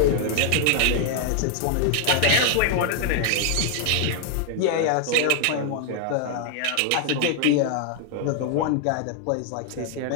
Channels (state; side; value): different; both; correlation 0.00